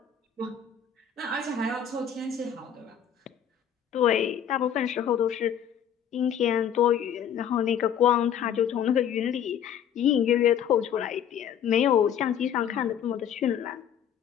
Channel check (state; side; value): quieter; right; 8.7 dB